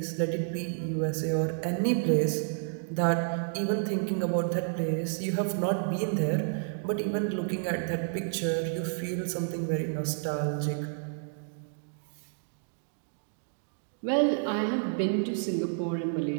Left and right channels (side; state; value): left; silent; digital silence